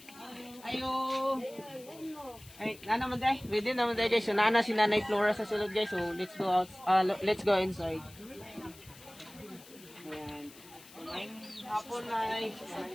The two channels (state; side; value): noise; left; hiss, 21 dB below the sound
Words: Ayo. Ay, naman day. Ready naman day guys. So, nana si Nanay Flora sa sulod guys. So, let's go out. Let's go inside. Ayan. So, ngayong hapon na